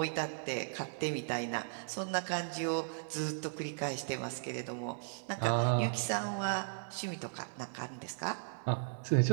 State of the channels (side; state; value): left; silent; 53 dB below the other